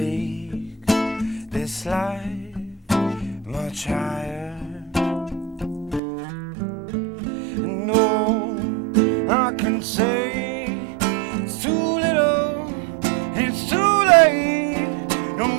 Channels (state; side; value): drops out; left; at 6.0 s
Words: this life much higher. I can say it's too little, it's too late.